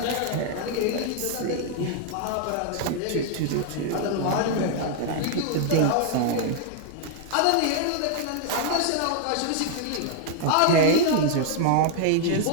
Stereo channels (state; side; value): different; both; correlation 0.00